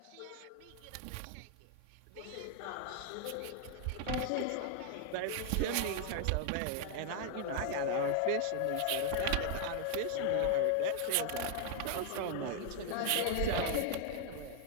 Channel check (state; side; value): different; both; correlation 0.00